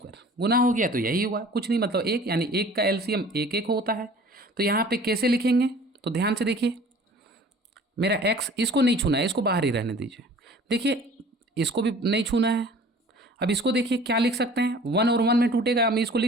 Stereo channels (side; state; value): both; normal; correlation 0.48